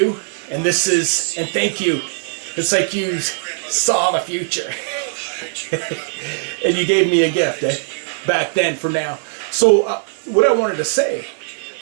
And this is, and thank you. It's like you saw the future. And you gave me a gift back then for now. So what I wanted to say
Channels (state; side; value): silent; left; digital silence